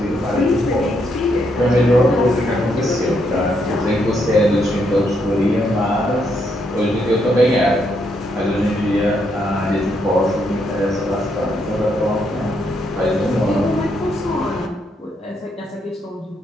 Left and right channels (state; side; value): normal; both; correlation 0.76